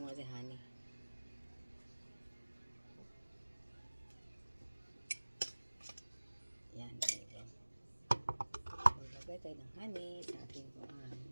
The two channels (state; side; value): inverted; both; correlation -1.00